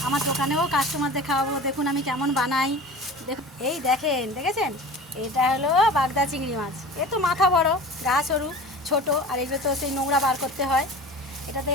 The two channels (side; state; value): both; normal; correlation 0.37